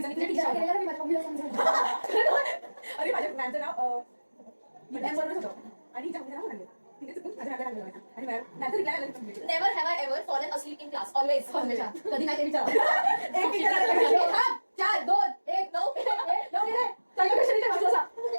अरे माझ्या मॅमचं नाव मॅम बरोबरच होतं आणि हिच्या नाव लागलं. तिने चुकून माझ्या नावाला लागलं आणि मॅमचं रिप्लाय आला. Never have I ever fallen असलीप in class. Always. कधी नाही ते विचार. एक विचारायला 4 2 1 9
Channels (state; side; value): inverted; both; correlation -1.00